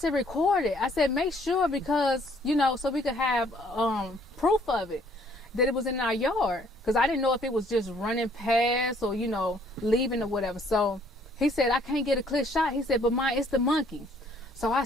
"record it." I said, "Make sure, because, you know, so we could have proof of it, that it was in our yard." Because I didn't know if it was just running past or, you know, leaving or whatever. So he said, "I can't get a clear shot." He said, "But it's the monkey." So I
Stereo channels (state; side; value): normal; both; correlation 0.62